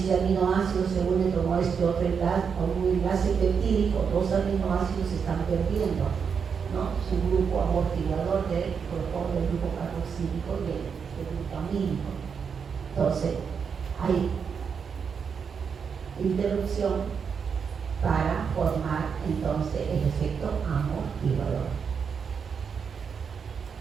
aminoácido se une con este otro enlace, con un enlace peptídico, dos aminoácidos se están perdiendo, ¿no? Es un grupo amortiguador del grupo carboxílico y el grupo amínico. Entonces, hay interrupción para formar entonces el efecto amortiguador.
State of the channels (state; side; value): quieter; left; 6.4 dB